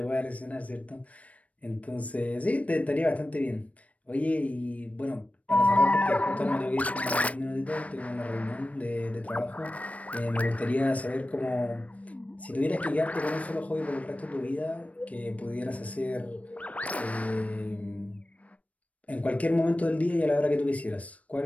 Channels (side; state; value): right; late; 0.066 ms